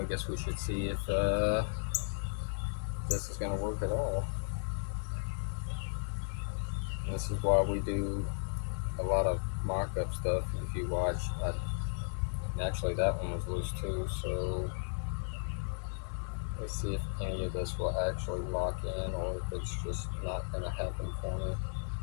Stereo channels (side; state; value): right; silent; digital silence